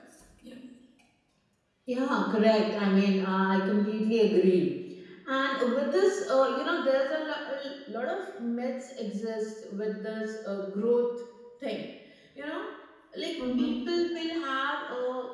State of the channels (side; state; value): both; identical; correlation 1.00